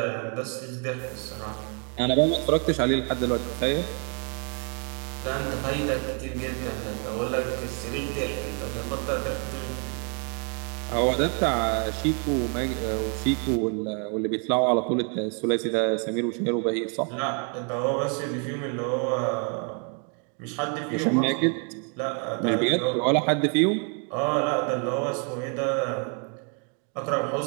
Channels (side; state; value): left; quieter; 39.8 dB